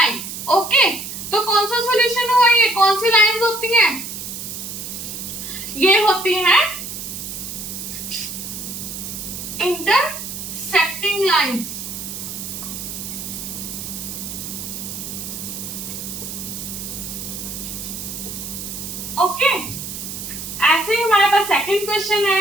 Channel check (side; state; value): right; noise; hiss, 8 dB below the sound